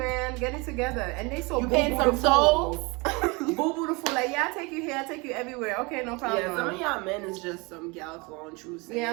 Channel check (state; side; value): quieter; left; 27.2 dB